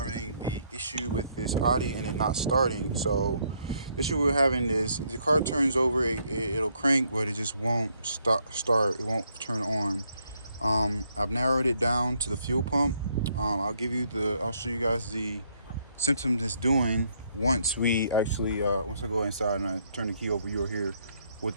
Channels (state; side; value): inverted; both; correlation -0.72